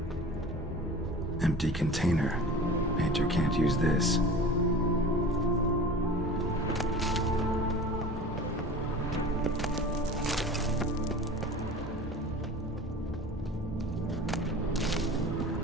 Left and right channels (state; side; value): normal; both; correlation 0.38